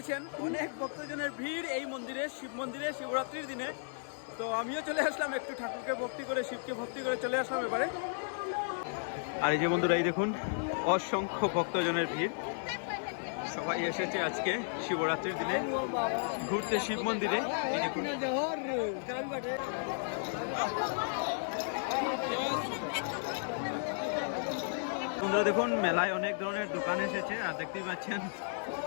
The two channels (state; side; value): silent; right; 55 dB below the other